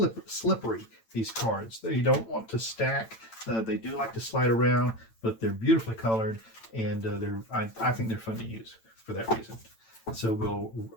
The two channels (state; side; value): late; right; 8.9 ms